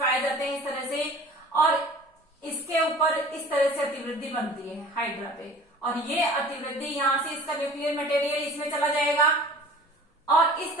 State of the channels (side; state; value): both; normal; correlation 0.44